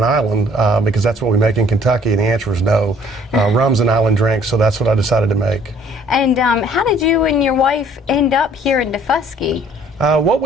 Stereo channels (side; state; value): both; normal; correlation 0.58